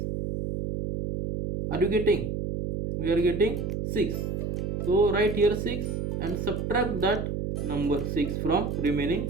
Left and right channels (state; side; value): noise; right; hum, 2 dB below the sound